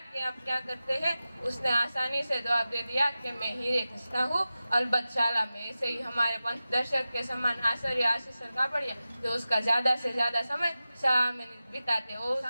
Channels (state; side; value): inverted; both; correlation -0.94